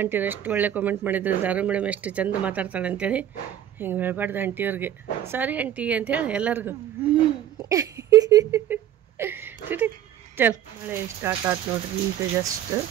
ಎಷ್ಟು ಒಳ್ಳೆ ಕಾಮೆಂಟ್ ಮಾಡಿದ್ರು. ಜಾರು ಮೇಡಮ್ ಎಷ್ಟು ಚಂದ ಮಾತಾಡ್ತಾಳೆ ಅಂತೇಳಿ. ಹಿಂಗೆ ಹೇಳ್ಬಾರ್ದು ಆಂಟಿಯವ್ರಿಗೆ. ಸಾರಿ ಆಂಟಿ ಅಂತೇಳಿ ಎಲ್ಲರಿಗೂ. ಚಲ್, ಮಳೆ ಸ್ಟಾರ್ಟ್ ಆಯ್ತು ನೋಡ್ರಿ ಈಗ. ಜಸ್ಟ್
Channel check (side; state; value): left; quieter; 10.9 dB